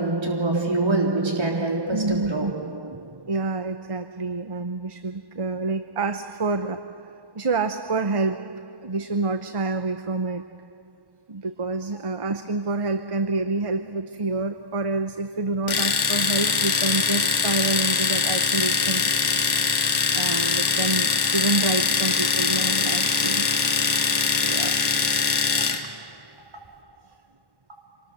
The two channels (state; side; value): late; left; 1.1 ms